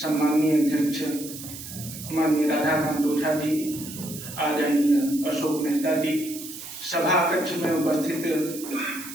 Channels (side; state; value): right; noise; hiss, 11 dB below the sound